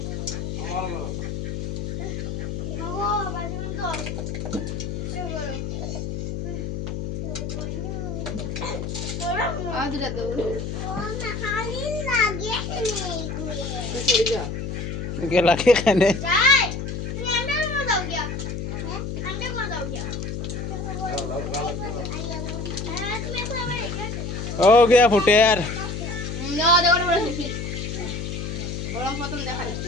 আদরা তো চলে যা গেলা কে খানে যাই তুমি अंदर में जाओ क्या हैं अंदर में जाओ क्या हो गया फुटेर না দেখো বড় শিশি গরম প্রথম দেখাই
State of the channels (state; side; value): noise; left; hum, 4 dB below the sound